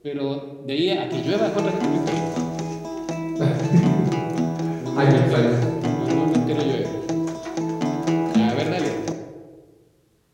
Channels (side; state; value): both; identical; correlation 1.00